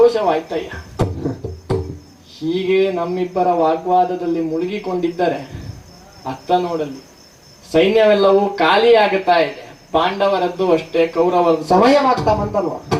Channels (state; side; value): identical; both; correlation 1.00